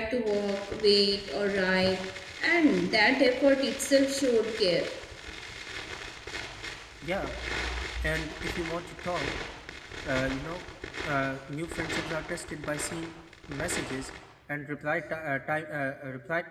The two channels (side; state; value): both; identical; correlation 1.00